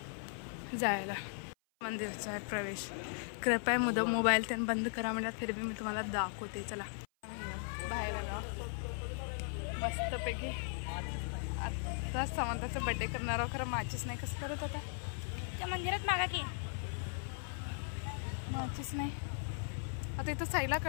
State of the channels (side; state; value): right; silent; 53 dB below the other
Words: जायला. मंदिरचा आहे प्रवेश. कृपया मोबाईल त्यांनी बंद करा म्हणतात फिर भी मी तुम्हाला दाखवते. चला बाहेर आलो मस्तपैकी. आता समंताचा बड्डे करणार आहोत. खरं माचीस नाही कसं करत आता त्या मंदिरात मागा की माचीस नाही. आता इथं साईला